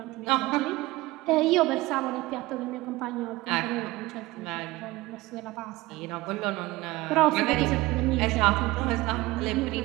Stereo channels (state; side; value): quieter; left; 19.7 dB